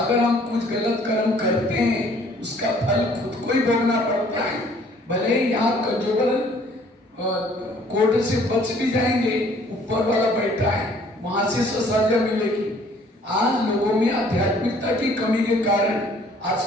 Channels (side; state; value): both; normal; correlation 0.58